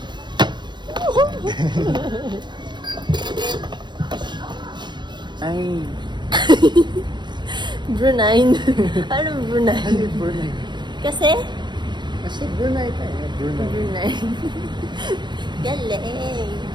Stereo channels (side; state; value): left; late; 0.22 ms